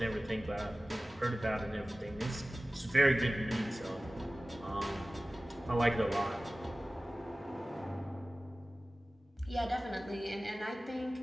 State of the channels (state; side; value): normal; both; correlation 0.97